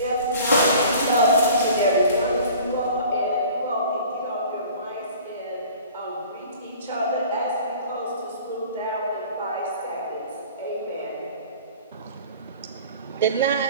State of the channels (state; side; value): inverted; both; correlation -0.46